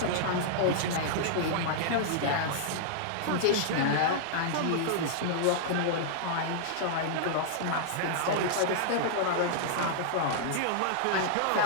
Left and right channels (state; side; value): different; both; correlation -0.02